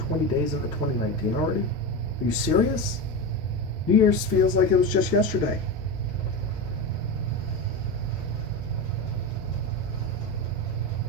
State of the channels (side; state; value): both; normal; correlation 0.20